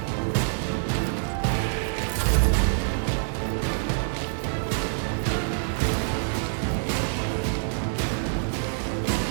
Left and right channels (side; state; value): left; silent; digital silence